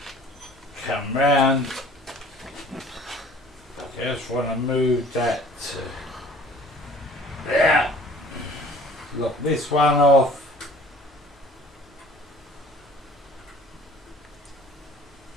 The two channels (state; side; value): normal; both; correlation 0.50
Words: Come round. Just want to move that to there. Lock this one off.